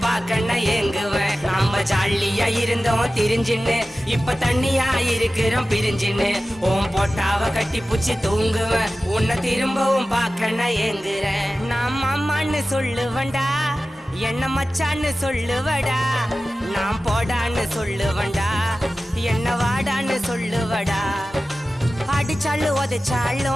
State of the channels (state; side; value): normal; both; correlation 0.95